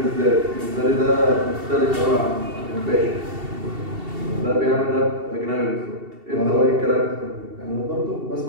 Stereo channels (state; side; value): late; left; 2.7 ms